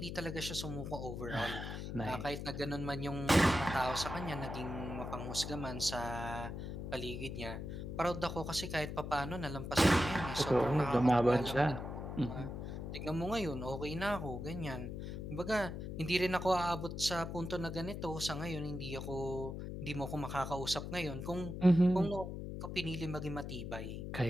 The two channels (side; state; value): left; noise; hum, 6 dB below the sound